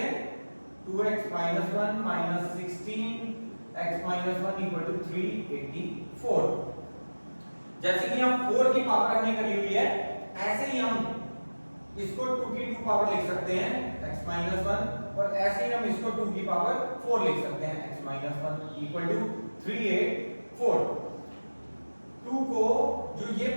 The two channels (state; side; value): inverted; both; correlation -1.00